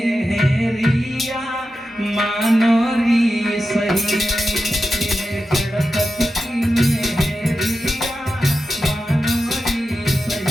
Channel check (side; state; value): both; normal; correlation 0.91